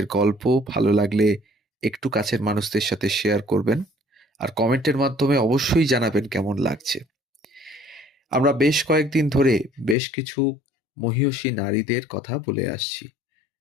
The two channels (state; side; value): drops out; right; at 10.0 s